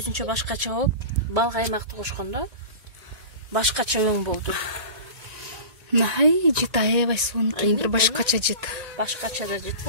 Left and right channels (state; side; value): late; left; 1.9 ms